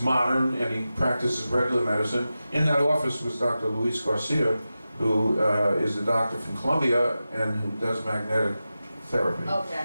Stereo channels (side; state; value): both; inverted; correlation -0.93